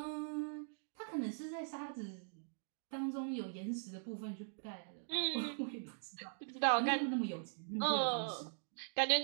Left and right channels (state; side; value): silent; left; digital silence